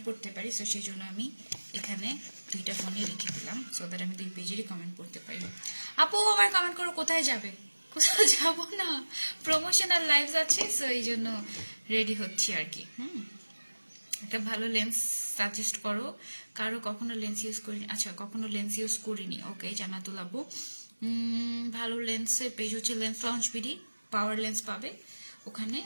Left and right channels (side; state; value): both; inverted; correlation -1.00